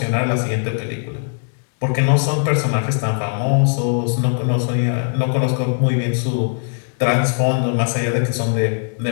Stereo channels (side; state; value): right; silent; digital silence